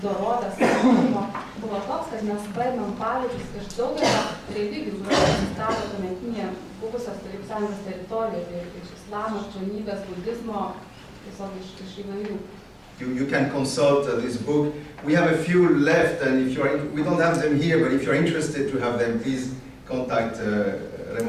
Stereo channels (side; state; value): both; identical; correlation 1.00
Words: dorovės buvo toks, kad mes paėmėm pavyzdžius iš daugelio religijų, kurios egzistavo tuometinėje buvusios Tarybų Sąjungos teritorijoje, tai iš islamo, krikščionybės, budizmo, tiesiog iš įvairių. You can consult this book. We have a few left, and we don't have them here, but if you're interested to have them, please contact